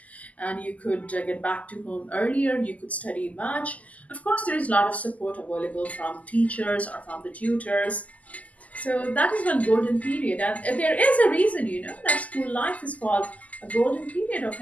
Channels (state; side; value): late; right; 0.074 ms